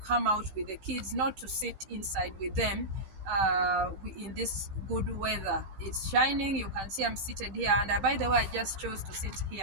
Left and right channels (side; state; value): left; late; 15 ms